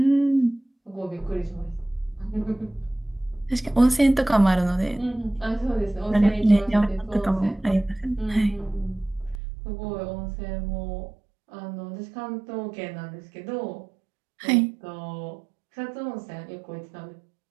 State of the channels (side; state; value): left; drops out; at 9.4 s